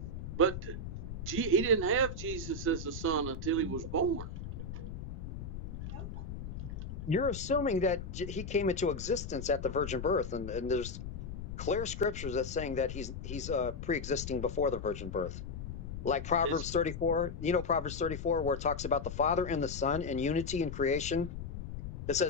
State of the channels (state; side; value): noise; left; rumble, 8 dB below the sound